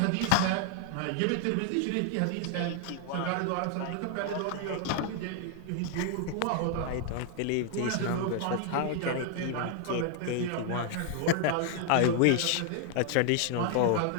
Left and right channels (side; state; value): both; different; correlation 0.00